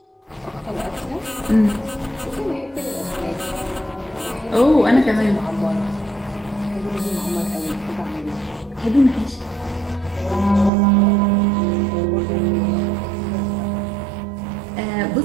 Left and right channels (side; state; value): left; drops out; at 10.7 s